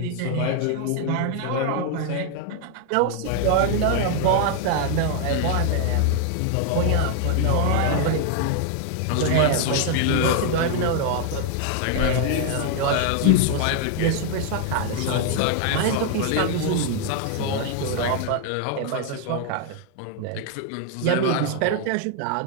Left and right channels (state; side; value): different; both; correlation 0.00